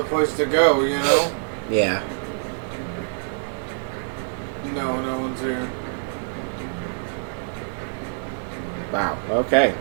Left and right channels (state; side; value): silent; left; digital silence